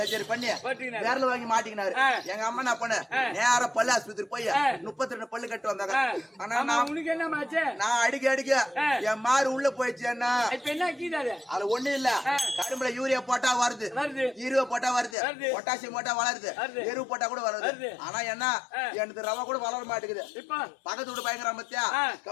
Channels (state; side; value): drops out; right; at 15.2 s